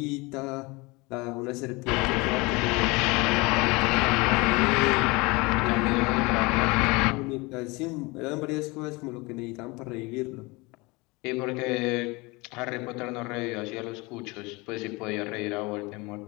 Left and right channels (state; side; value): quieter; right; 25.2 dB